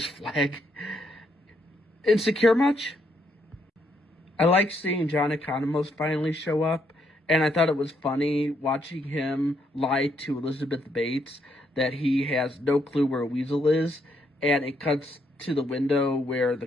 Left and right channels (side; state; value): both; normal; correlation 0.74